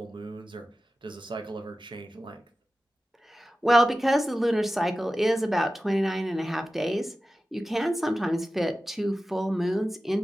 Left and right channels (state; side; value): normal; both; correlation 0.95